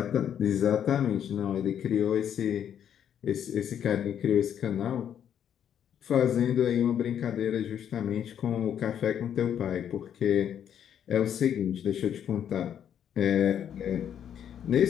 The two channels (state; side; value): quieter; right; 9.3 dB